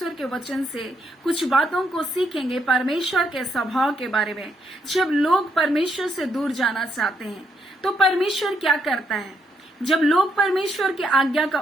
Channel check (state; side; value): normal; both; correlation 0.75